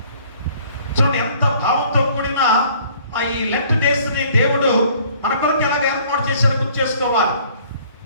చూడండి ఎంత భావంతో కూడిన ఈ లెంట్ డేస్ ని దేవుడు మన కొరకు ఎలాగ ఏర్పాటు చేశాడో గుర్తు చేసుకోవాలి.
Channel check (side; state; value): both; inverted; correlation -0.56